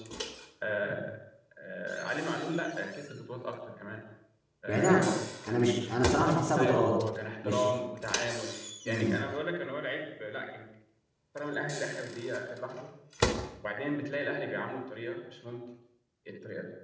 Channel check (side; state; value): both; identical; correlation 1.00